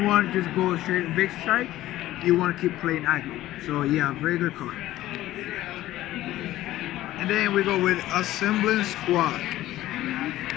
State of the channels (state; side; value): quieter; right; 15.1 dB